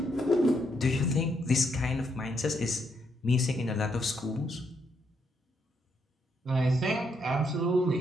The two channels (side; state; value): both; normal; correlation 0.76